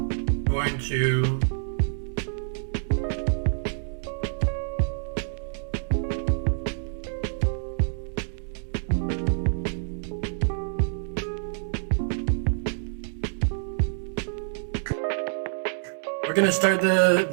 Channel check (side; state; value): left; silent; 60 dB below the other